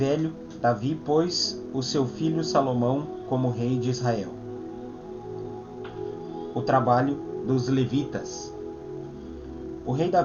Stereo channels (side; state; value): both; identical; correlation 1.00